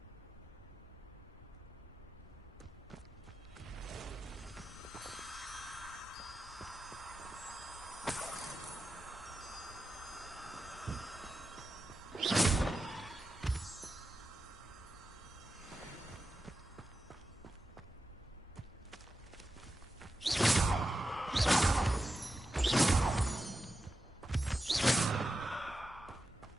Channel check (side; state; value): both; normal; correlation 0.90